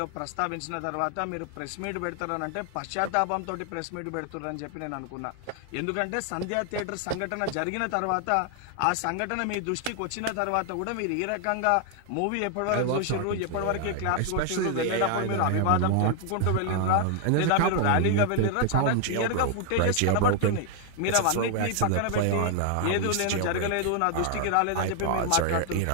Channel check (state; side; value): different; both; correlation 0.00